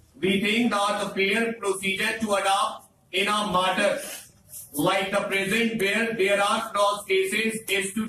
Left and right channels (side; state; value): both; identical; correlation 1.00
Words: We think that the fair procedure to adopt in a matter like the present where there are cross cases is to